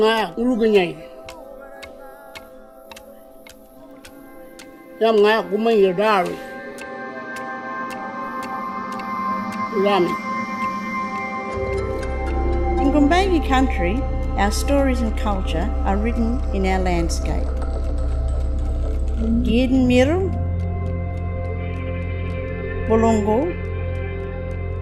Uruguay Yanga Gumayadari Rami. In Gumbayi country, our stories and culture are written in our landscape. Giden Miru, Bolongo,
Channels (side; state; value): both; identical; correlation 1.00